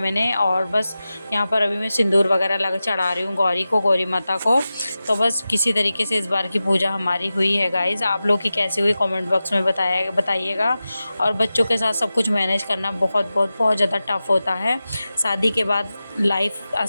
और बस यहाँ पर अभी मैं सिंदूर वगैरह लगा चढ़ा रही हूँ गौरी को, गौरी माता को। तो बस किसी तरीके से इस बार की पूजा हमारी हुई है गाइज़। आप लोग की कैसी हुई कमेंट बॉक्स में बताइएगा। और बच्चों के साथ सब कुछ मैनेज करना बहुत बहुत बहुत ज़्यादा टफ़ होता है। शादी के बाद लाइफ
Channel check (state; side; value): inverted; both; correlation -0.94